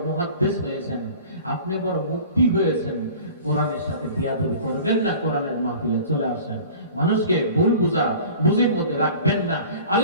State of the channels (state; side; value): inverted; both; correlation -0.43